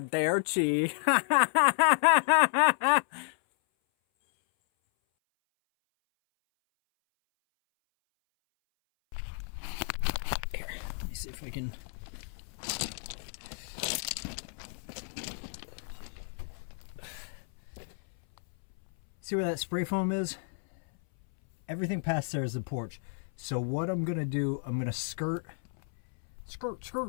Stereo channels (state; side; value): silent; right; 57 dB below the other